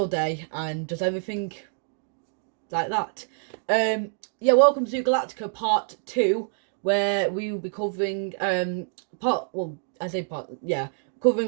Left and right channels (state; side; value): silent; left; 61 dB below the other